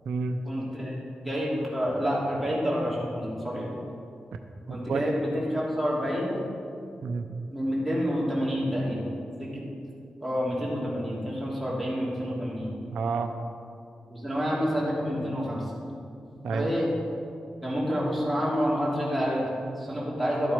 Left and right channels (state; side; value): normal; both; correlation 0.91